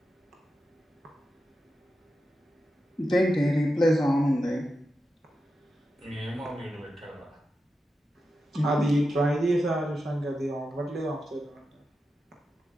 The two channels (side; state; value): both; normal; correlation 0.90